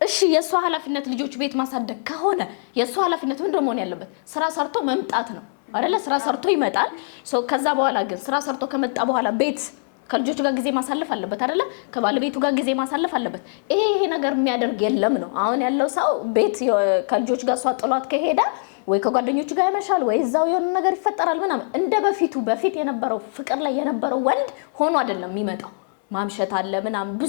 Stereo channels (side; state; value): right; silent; digital silence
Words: እሺ የሷ ኃላፊነት ልጆች ቤት ማሳደግ ከሆነ የሷ ኃላፊነት ምንድን ነው መሆን ያለበት? ስራ ሰርቶ መምጣት ነው አይደለ? ስራ ሰርቶ ይመጣል። ከዛ በኋላ ግን ስራ ሰርቶ ከመጣ በኋላ ቤት ከልጆቹ ጋር ጊዜ ማሳለፍ አለበት አይደለ? ከባለቤቱ ጋር ጊዜ ማሳለፍ አለበት። ይሄ ነገር የሚያደርግ የለም ነው አሁን ያለው ሰው። ቤት ከልጆቹ ጋር እሷ ጥሏት ከሄደ ወይ ከጓደኞቹ ጋር ያመሻል ወይ እዛው የሆነ ነገር ይፈጠራል ምናምን። እንደ በፊት የነበረው ፍቅር ላይ የነበረው ወንድ ሆኖ አይደለም የሚመጣው። ማምሸት አለ ምናምን